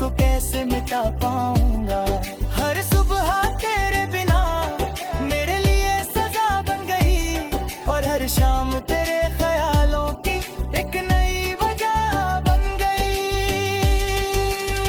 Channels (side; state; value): both; identical; correlation 1.00